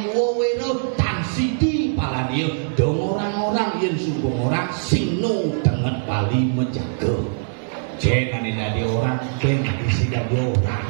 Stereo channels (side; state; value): left; silent; 64 dB below the other